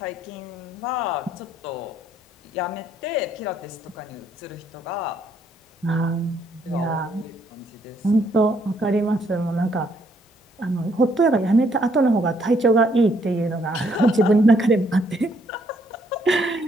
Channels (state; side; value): normal; both; correlation 0.69